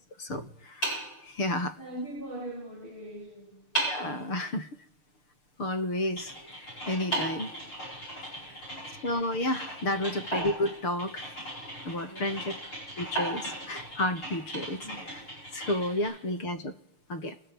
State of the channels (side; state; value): right; late; 6.7 ms